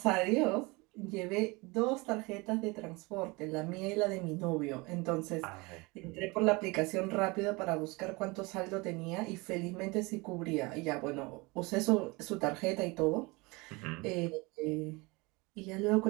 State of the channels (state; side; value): quieter; left; 25.4 dB